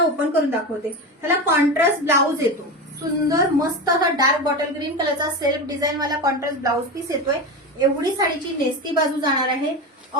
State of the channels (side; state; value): both; normal; correlation 0.22